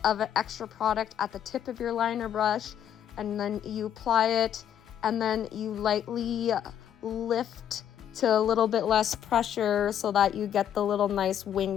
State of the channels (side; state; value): right; quieter; 9.8 dB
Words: of an extra product at the tip of your liner brush, and then you apply it, and then you lightly lift to a little bit less pressure so that you get the little nice